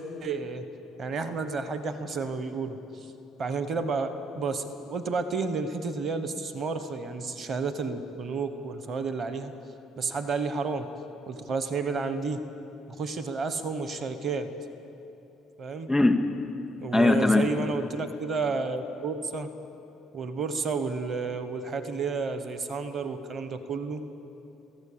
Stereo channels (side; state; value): both; normal; correlation 0.73